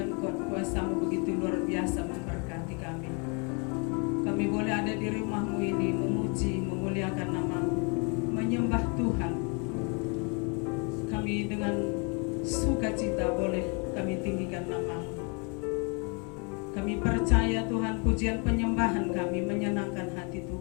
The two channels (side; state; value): right; quieter; 34.5 dB